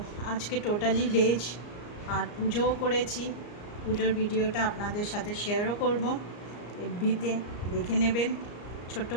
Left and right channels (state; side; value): late; right; 34 ms